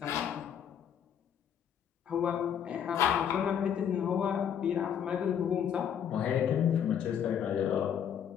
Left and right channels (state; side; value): quieter; right; 8.7 dB